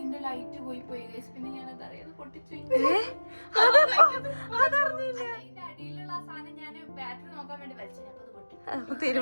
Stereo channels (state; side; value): inverted; both; correlation -1.00